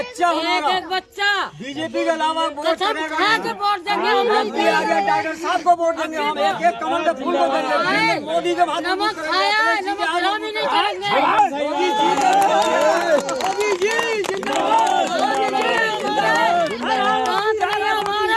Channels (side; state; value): both; identical; correlation 1.00